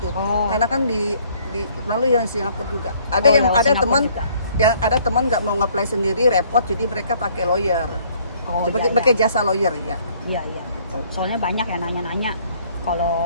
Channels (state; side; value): inverted; both; correlation -0.61